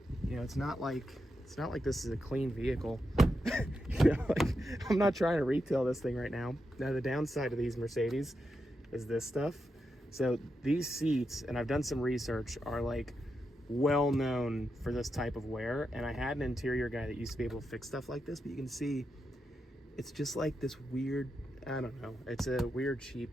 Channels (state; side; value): normal; both; correlation 0.86